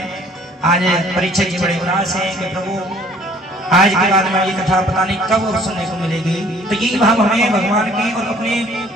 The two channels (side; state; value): both; normal; correlation 0.56